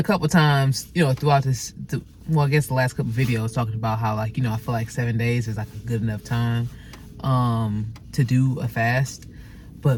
couple times, throughout this, I guess the last couple videos talking about how, like, I feel like 7 days is like a good enough time, to do a fast.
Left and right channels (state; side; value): identical; both; correlation 1.00